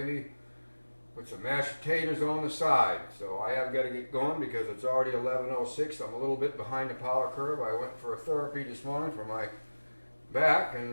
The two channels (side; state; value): both; inverted; correlation -1.00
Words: with some mashed potatoes on the side. So I have got to get going because it's already 11:06. I'm a little bit behind the power curve. I went for a therapy this morning for my back,